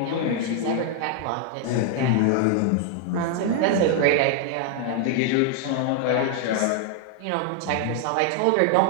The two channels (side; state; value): both; different; correlation 0.00